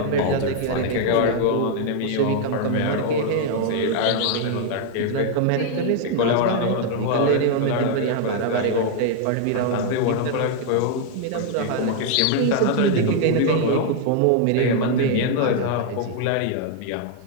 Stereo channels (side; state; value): both; different; correlation 0.00